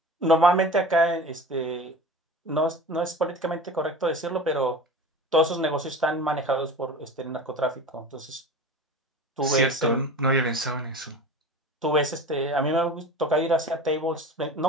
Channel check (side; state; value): both; normal; correlation 0.35